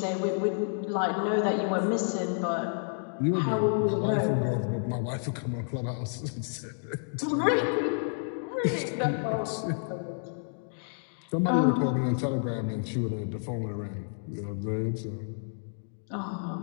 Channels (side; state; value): right; silent; digital silence